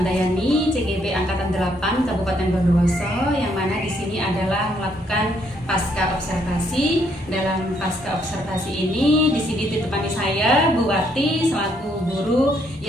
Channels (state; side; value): normal; both; correlation 0.71